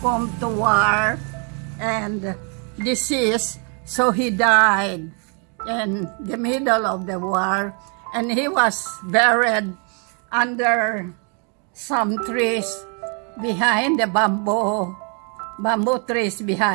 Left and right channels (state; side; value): quieter; left; 38.3 dB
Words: to war and disease, so he died in the middle of the war, and he was buried under some trees behind the bamboo trees